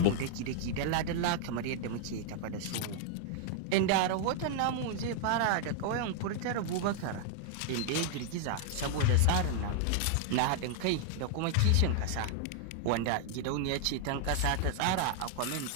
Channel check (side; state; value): both; different; correlation 0.00